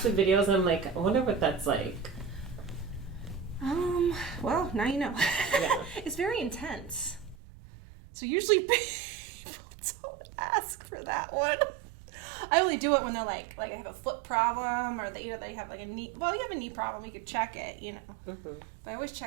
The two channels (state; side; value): drops out; left; at 7.4 s